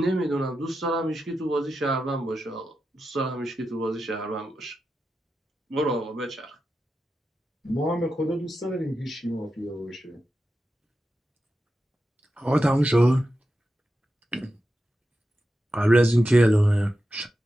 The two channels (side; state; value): both; normal; correlation 0.90